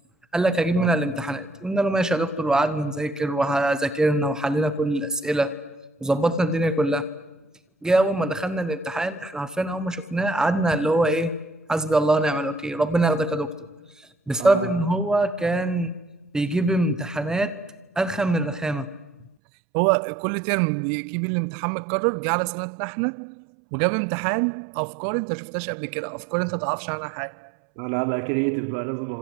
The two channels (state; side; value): drops out; left; at 19.3 s